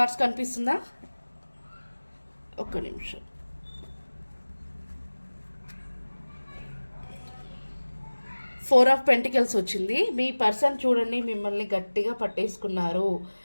కనిపిస్తుందా? ఒక్క నిమిషం. ఫోర్ ఆఫ్ పెంటికల్స్ వచ్చింది. మీ పర్సన్ చూడండి మిమ్మల్ని గట్టిగా పట్టేసుకున్నారు.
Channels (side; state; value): both; inverted; correlation -1.00